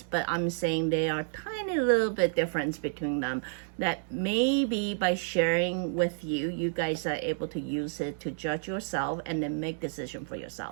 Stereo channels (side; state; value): left; silent; digital silence